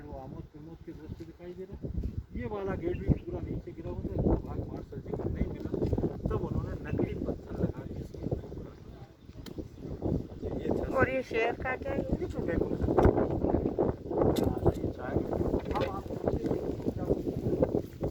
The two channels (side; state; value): both; identical; correlation 1.00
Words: वो आमोद प्रमोद के दृश्य दिखाई दे रहा है। ये वाला गेट भी पूरा नीचे गिरा हुआ था, भाग मार्शल जी को नहीं मिला, तब उन्होंने नकली पत्थर लगा के इसमें ये था। और ये शेर का क्या है? ये तो देखो ये चाय अब आप सोचिए